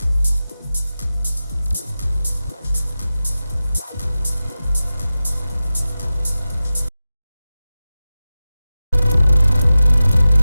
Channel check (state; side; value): inverted; both; correlation -0.94